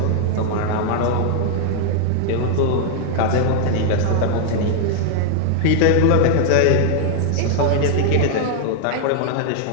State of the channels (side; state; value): both; different; correlation 0.00